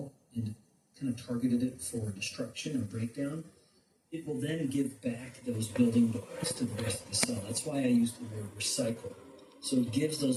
and kind of targeted it for destruction or breakdown, it will then give back those building blocks to the rest of the cell. That's why I used the word recycle. So it gives those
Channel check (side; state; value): both; identical; correlation 1.00